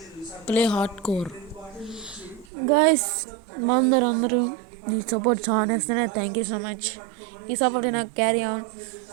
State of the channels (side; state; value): left; drops out; at 2.5 s